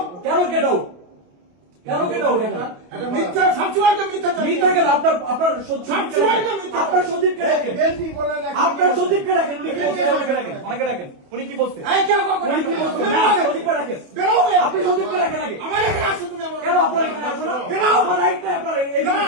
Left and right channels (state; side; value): late; left; 28 ms